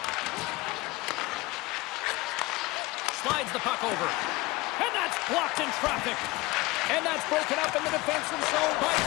Slides the puck over. And that's blocked in traffic. And that's broken up in the defensive zone by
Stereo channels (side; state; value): right; quieter; 21.5 dB